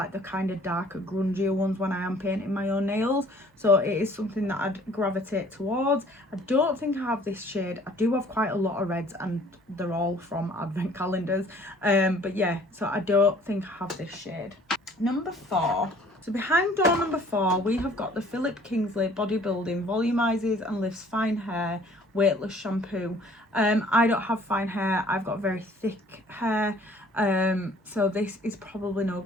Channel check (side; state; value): both; normal; correlation 0.55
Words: the kind of darker, grungier ones when I am painting my own nails, so it is something that I'd gravitate towards. I don't think I have this shade. I do have quite a lot of reds, and they're all from advent calendars, but yeah, so I don't think I have this shade. Number 4. So behind door number 4, we have got the Philip Kingsley Bodybuilding Volumizes and Lifts Fine Hair Weightless Shampoo. I don't have fine hair, I've got very thick hair, so this is probably no